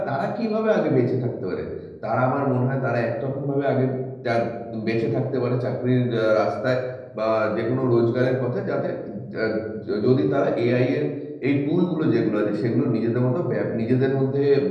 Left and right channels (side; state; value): both; identical; correlation 1.00